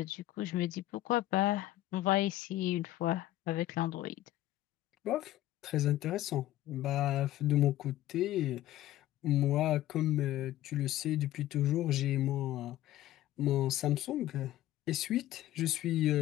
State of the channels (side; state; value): right; quieter; 14.5 dB